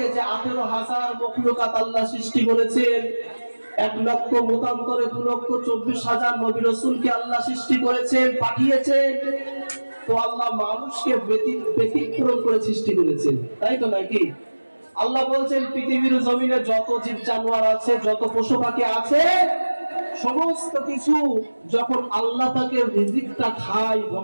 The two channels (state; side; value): inverted; both; correlation -1.00